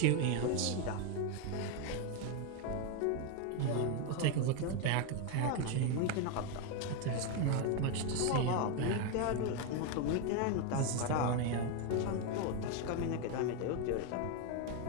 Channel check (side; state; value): both; different; correlation 0.02